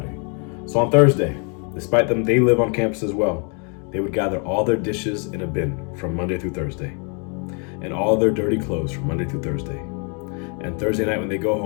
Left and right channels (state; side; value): quieter; right; 37.2 dB